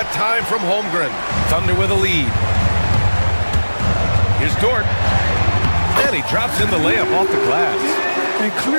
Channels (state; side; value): inverted; both; correlation -1.00